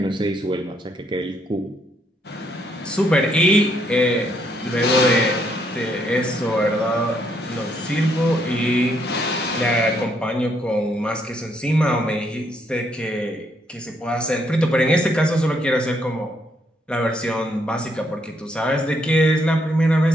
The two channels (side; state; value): both; normal; correlation 0.72